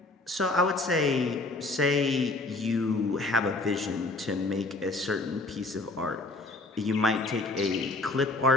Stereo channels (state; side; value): quieter; right; 3.1 dB